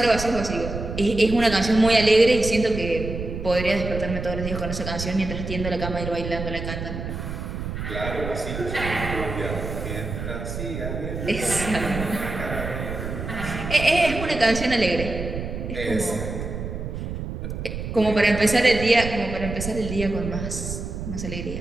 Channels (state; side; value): noise; right; rumble, 6 dB below the sound